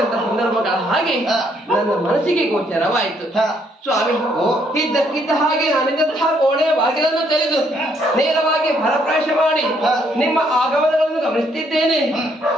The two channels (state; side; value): normal; both; correlation 0.70